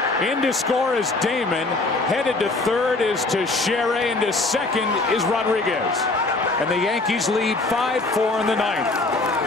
In to score is Damon. Headed to third is Teixeira. And to second is Rodriguez. And the Yankees lead 5-4 in the 9th.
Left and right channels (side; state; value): right; quieter; 3.2 dB